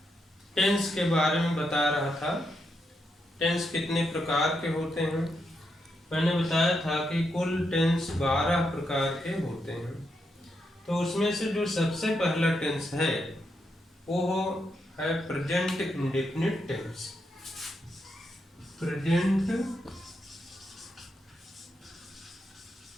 टेंस के बारे में बता रहा था। टेंस कितने प्रकार के होते हैं। मैंने बताया था कि कुल टेंस 12 प्रकार के होते हैं। तो उसमें से जो सबसे पहला टेंस है वो है present indefinite tense. Present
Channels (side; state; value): both; normal; correlation 0.82